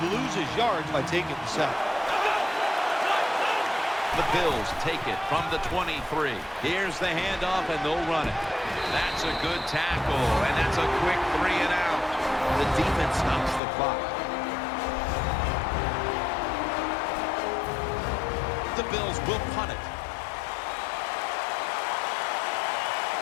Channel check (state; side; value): drops out; right; at 13.6 s